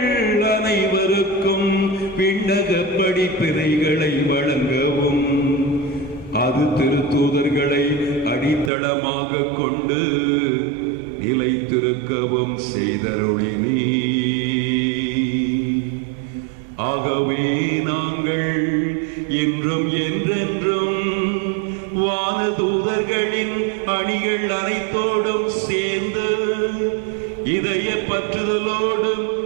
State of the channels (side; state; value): left; drops out; at 8.7 s